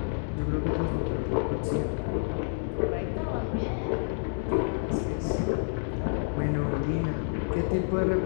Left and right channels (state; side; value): silent; right; digital silence